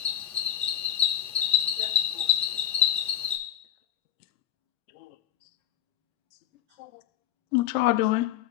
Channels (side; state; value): right; quieter; 11.4 dB